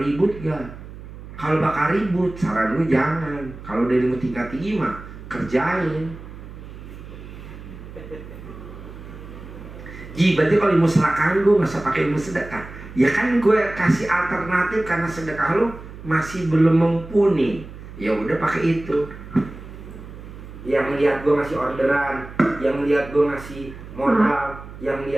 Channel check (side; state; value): right; noise; hum, 14 dB below the sound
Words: ribut gak? Kalau bakal ribut, saran gue jangan. Kalau udah ilmu tingkat tinggi mah kerjain. Ji, berarti kalau ilmu selakangan gue gak usah pakai ilmu sedekah. Ya kan gue kasih alternatif karena sedekah lo masih belum mumpuni. Ya udah pakai itu. Yang lihat gue ngasih orderan, yang lihat gue ngasih modal, yang